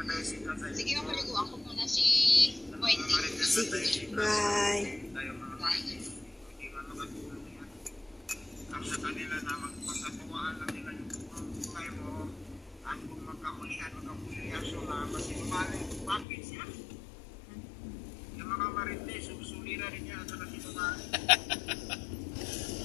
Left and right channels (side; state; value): right; drops out; at 16.2 s